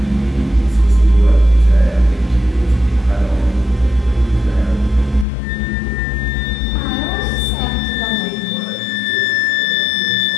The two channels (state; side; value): drops out; right; at 5.2 s